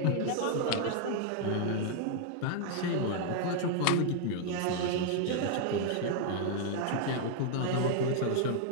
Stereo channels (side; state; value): both; different; correlation 0.00